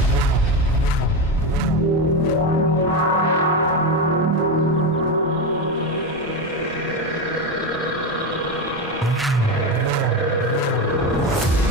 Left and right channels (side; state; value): both; normal; correlation 0.14